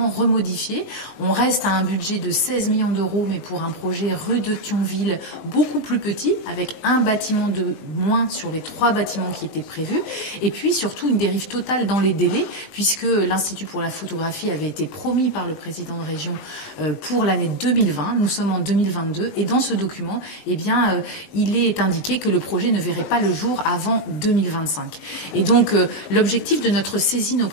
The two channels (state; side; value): late; right; 19 ms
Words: remodifié. On reste à un budget de 16 millions d'euros, mais pour un projet rue de Thionville beaucoup plus petit, avec un bâtiment de moins sur les 3 bâtiments qui étaient prévus. Et puis surtout une dérive totale dans les délais, puisque l'Institut pour la photographie avait été promis par le président de région pour l'année 2020. Nous sommes en 2022 et dans ce document, eh bien, il est indiqué que le projet ne verrait pas le jour avant 2025. Et donc l'objectif de notre saisine